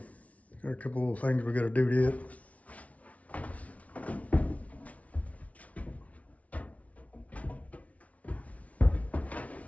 got a couple little things we gotta do to it.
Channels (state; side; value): late; right; 0.067 ms